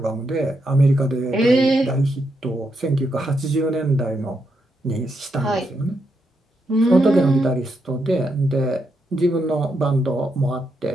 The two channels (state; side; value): normal; both; correlation 0.81